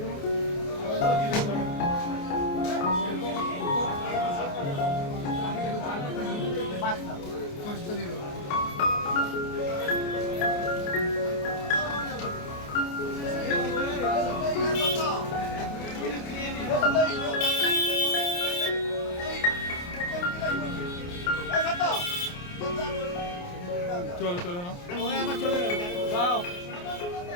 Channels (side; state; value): right; late; 28 ms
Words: দেবো চলো চলো না ওই আবার চলে যাবে দাও